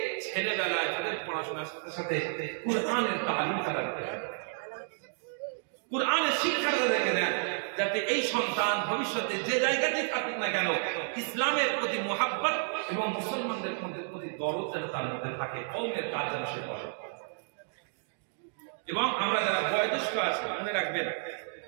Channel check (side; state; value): left; silent; digital silence